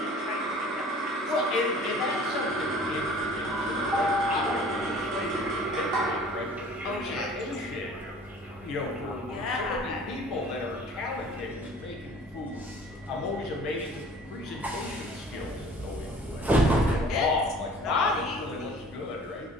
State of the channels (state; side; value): normal; both; correlation 0.48